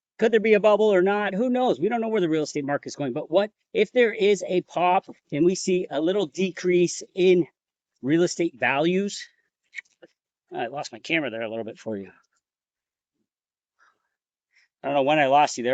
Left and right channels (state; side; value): identical; both; correlation 1.00